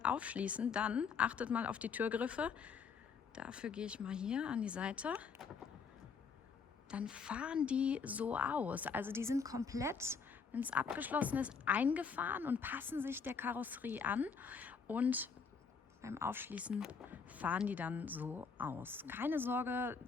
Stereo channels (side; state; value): right; quieter; 5.6 dB